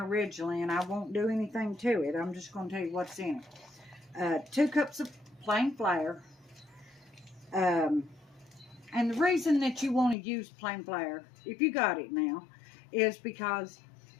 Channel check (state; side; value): drops out; right; at 10.2 s